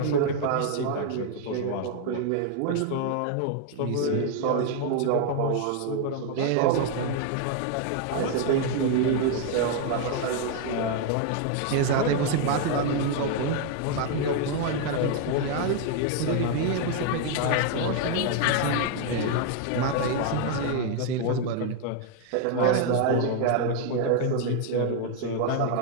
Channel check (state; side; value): different; both; correlation 0.00